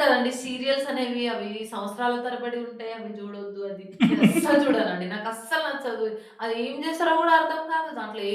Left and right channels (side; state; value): both; identical; correlation 1.00